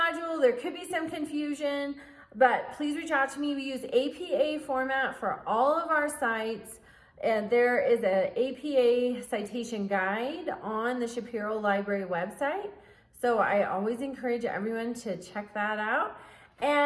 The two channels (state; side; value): identical; both; correlation 1.00